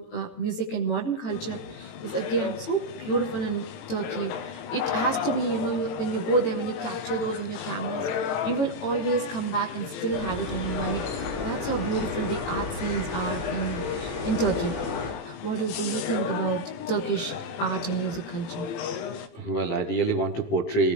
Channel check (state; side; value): late; right; 18 ms